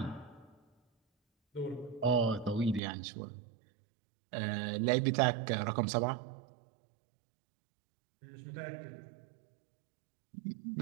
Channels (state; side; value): drops out; left; at 2.8 s